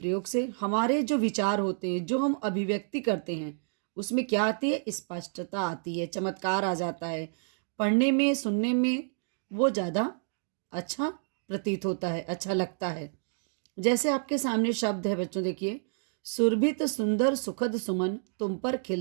से हमारे जो विचार होते हैं, जो हम अभिव्यक्ति करते हैं, उसमें क्या आती है, स्पष्टता आती है, चमत्कार आ जाता है। पढ़ने में, सुनने में वो ज़्यादा अच्छा प्रतीत होता है, अच्छा लगता है। जैसे आपके सामने शब्द है बच्चों, देखिए, सुरभित सुंदर सुखद सुमन तुम पर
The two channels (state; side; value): silent; left; digital silence